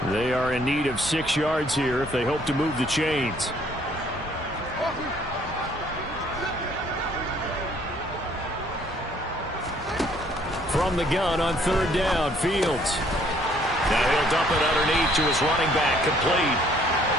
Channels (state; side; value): normal; both; correlation 0.62